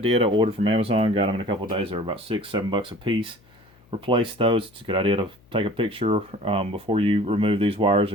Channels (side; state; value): left; noise; hum, 30 dB below the sound